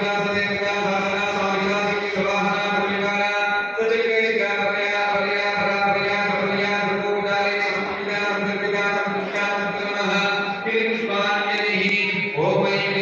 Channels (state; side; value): identical; both; correlation 1.00